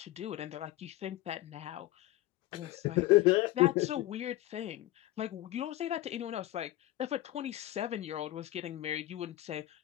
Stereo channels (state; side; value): quieter; right; 15.9 dB